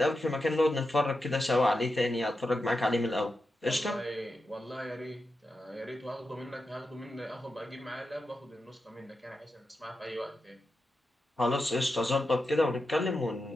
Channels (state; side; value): normal; both; correlation 0.89